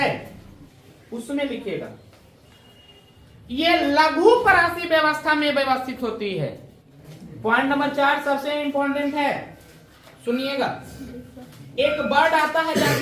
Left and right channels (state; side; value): identical; both; correlation 1.00